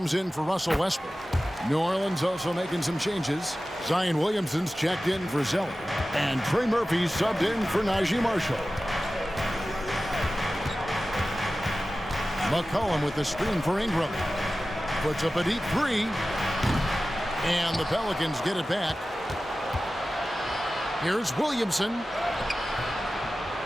in for Russell Westbrook. New Orleans also making some changes. Zion Williamson's checked in for Zeller. And Trey Murphy's subbed in for Najee Marshall. McCollum with the screen for Ingram. Puts up a deep three. And the Pelicans get it back. Here's Williamson.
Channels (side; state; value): both; normal; correlation 0.95